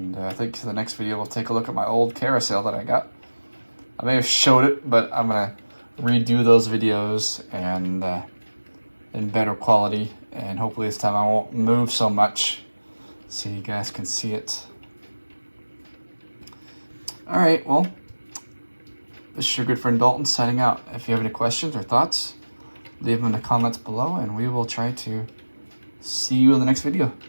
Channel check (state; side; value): inverted; both; correlation -1.00